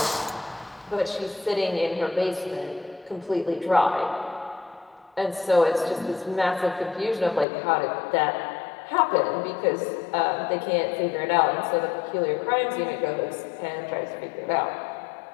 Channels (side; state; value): right; drops out; at 7.5 s